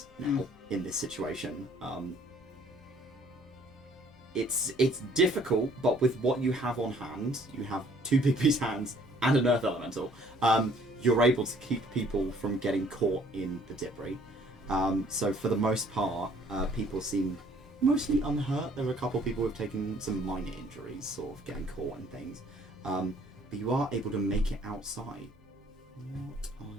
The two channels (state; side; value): normal; both; correlation 0.59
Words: now in this situation. It's difficult, but with what you have on hand, you have 2 big beast hands and an earth elemental. You're able to keep people from getting caught in the debris. So for the most part, people seem mostly unhurt. There were a couple of people who've taken some minor injuries, sort of getting caught and things. But you are able to make it outside. What are